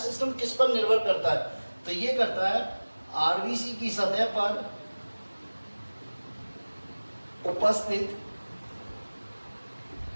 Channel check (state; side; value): inverted; both; correlation -1.00